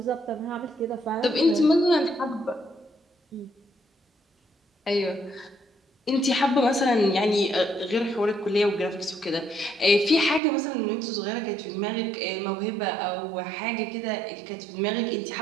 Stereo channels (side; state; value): left; drops out; at 10.4 s